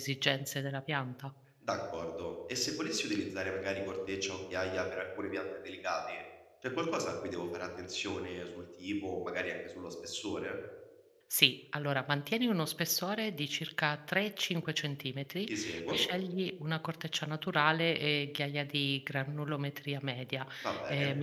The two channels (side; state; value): both; identical; correlation 1.00